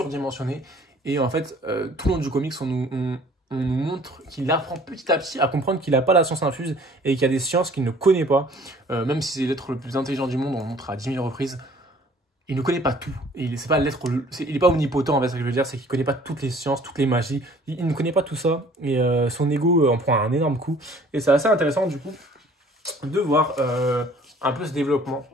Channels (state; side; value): normal; both; correlation 0.53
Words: Et en fait, tout le long du comics, on nous montre qu'il apprend petit à petit à comprendre qu'il n'a pas la science infuse et qu'il y a des sciences qu'il ne connaît pas. Même si c'est l'être le plus intelligent du monde, on le montre à 10 000 reprises. Il ne connaît pas tout. Il n'est pas omnipotent, en fait, ce que je veux dire, c'est qu'il ne connaît pas toutes les sciences, toutes les magies. Il ne connaît pas tout ça. Et son ego en prend un énorme coup. Et c'est assez intéressant, du coup, de voir un peu ce développement